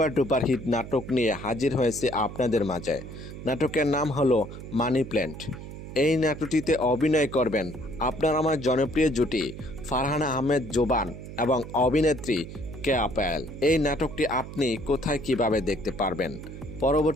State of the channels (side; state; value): right; noise; hum, 11 dB below the sound